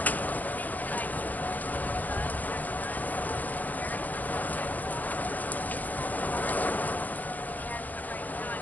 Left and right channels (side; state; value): right; late; 0.080 ms